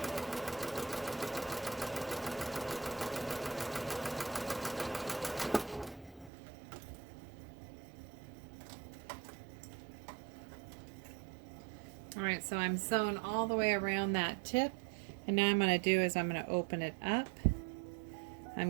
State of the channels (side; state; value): left; drops out; at 6.3 s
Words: Alright, so I'm sewn all the way around that tip, and now I'm going to do is I'm going to open it up.